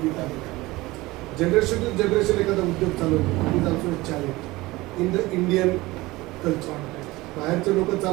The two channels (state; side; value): quieter; left; 20.1 dB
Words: आहे. जनरेशन टू जनरेशन एखादा उद्योग चालवतो is also challenge in the Indian culture. बाहेरचे लोक